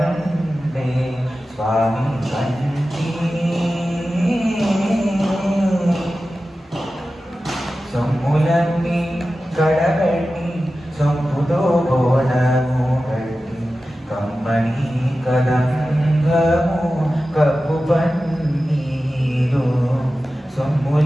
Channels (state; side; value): normal; both; correlation 0.94